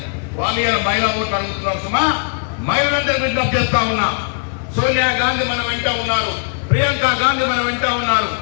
వాళ్ళు ఇలా మహిళా ఓట్లు అడుగుతున్నారు। సుమా మహిళలందరూ విజ్ఞప్తి చేస్తా ఉన్నా, సోనియా గాంధీ మన వెంట ఉన్నారు, ప్రియాంక గాంధీ మన వెంట ఉన్నారు,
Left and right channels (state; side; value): silent; right; 67 dB below the other